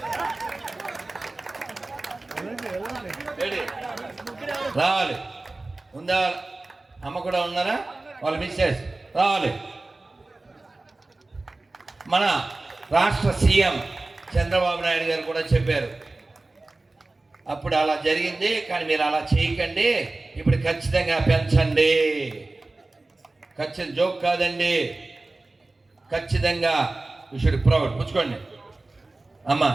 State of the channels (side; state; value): left; quieter; 3.1 dB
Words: రావాలి. ఉందా? అమ్మ కూడా ఉన్నారా? వాళ్ళు మిస్సెస్ రావాలి. మన రాష్ట్ర సీఎం చంద్రబాబు నాయుడు గారు కూడా చెప్పారు, అప్పుడు అలా జరిగింది కానీ మీరు అలా చేయకండి, ఇప్పుడు ఖచ్చితంగా పెంచండి. ఖచ్చితంగా జోక్ కాదండి, ఖచ్చితంగా యూ షుడ్ ప్రౌడ్. పుచ్చుకోండి అమ్మ,